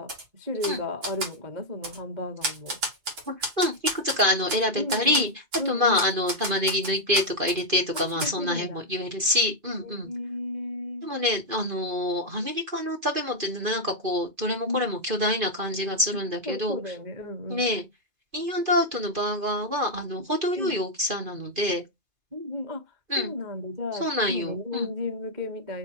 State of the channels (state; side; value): late; left; 2.5 ms